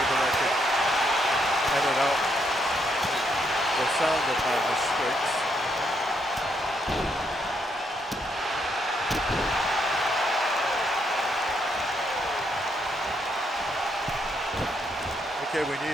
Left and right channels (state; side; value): normal; both; correlation 0.76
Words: that I could edit out the sound of my mistakes. Okay, we